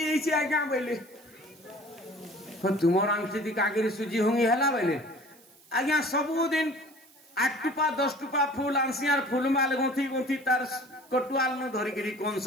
आज्ञा बोले तुमर आंखी कागिरी सुजी हुंगी है बोले आज्ञा सबुदिन 8 टुपा 10 टुपा फूल आंसियार फूलमाल गुंथी गुंथी तार कटुआल न धरिकी कंस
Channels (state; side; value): noise; right; hiss, 28 dB below the sound